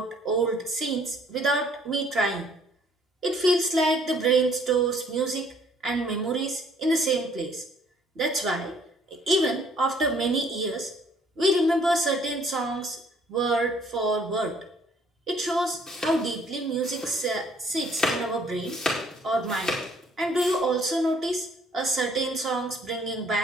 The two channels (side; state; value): both; normal; correlation 0.61